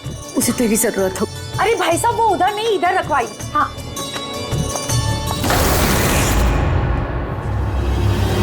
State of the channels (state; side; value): identical; both; correlation 1.00